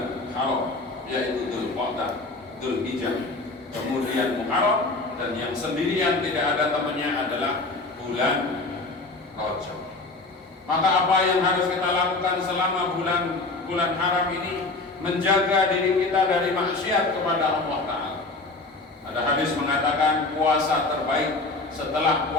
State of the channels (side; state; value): right; quieter; 3.3 dB